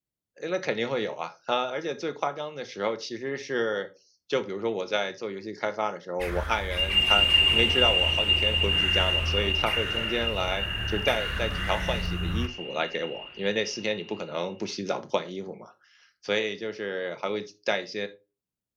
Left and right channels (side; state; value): both; identical; correlation 1.00